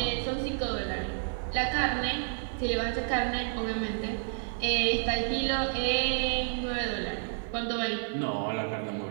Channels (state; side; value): silent; left; digital silence